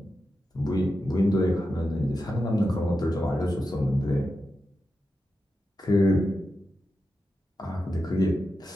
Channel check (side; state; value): both; normal; correlation 0.90